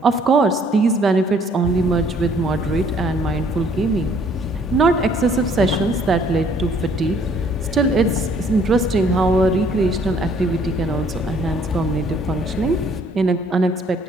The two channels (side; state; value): both; normal; correlation 0.61